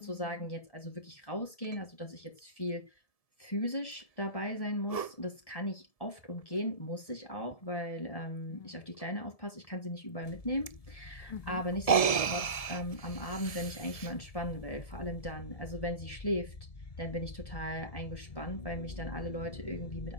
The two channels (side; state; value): right; late; 1.7 ms